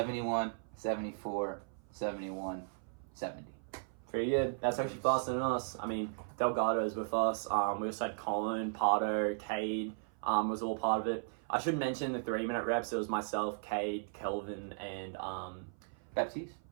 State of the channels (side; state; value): left; silent; 54 dB below the other